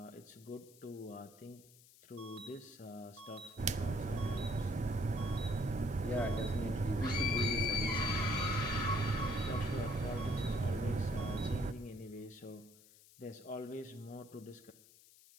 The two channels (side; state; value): left; noise; hiss, 24 dB below the sound